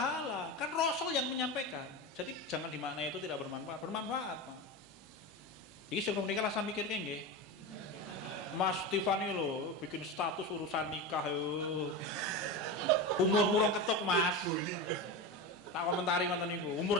kan Rasul yang menyampaikan. Jadi jangan dimaknai itu tidak bermanfaat, bermanfaat, Pak. Iki sing nikah lah saya mikir nggih. Mas Tiffany lho bikin status urusan nikah yo. Umur rong ketuk, Mas. Tak komentari ngoten niku.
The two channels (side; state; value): both; normal; correlation 0.22